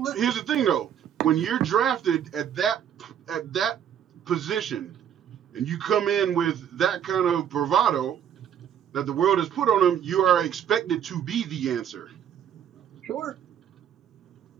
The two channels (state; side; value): quieter; left; 9.2 dB